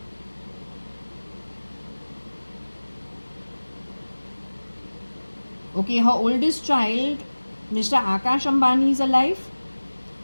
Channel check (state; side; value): inverted; both; correlation -1.00